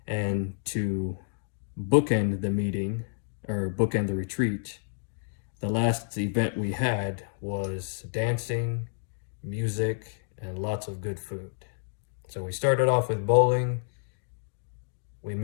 And to bookend the meeting, or bookend the retreat, the last event we had was dancing, music, and lots of good food. So we started off with bowling, we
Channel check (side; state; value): right; silent; digital silence